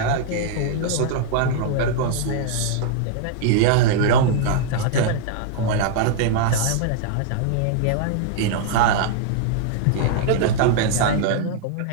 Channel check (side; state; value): both; different; correlation -0.01